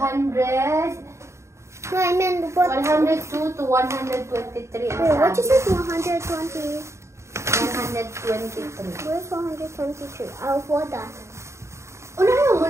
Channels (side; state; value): left; late; 0.14 ms